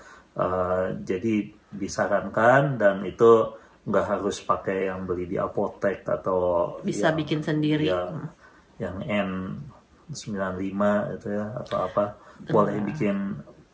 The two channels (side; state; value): both; identical; correlation 1.00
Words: Jadi disarankan, dan itu nggak harus pakai yang beli di apotek atau Bisa bikin sendiri. Yang N95 itu ya, atau apa. Boleh